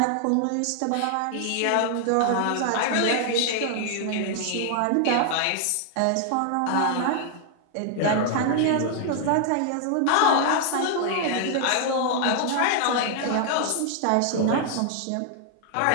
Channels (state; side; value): different; both; correlation 0.00